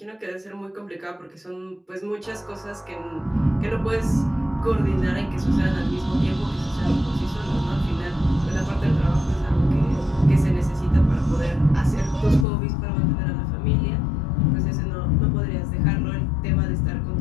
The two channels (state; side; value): drops out; right; at 12.5 s